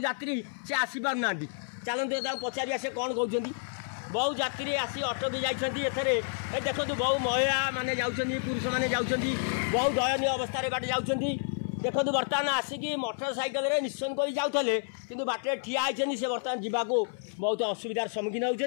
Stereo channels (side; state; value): right; silent; 58 dB below the other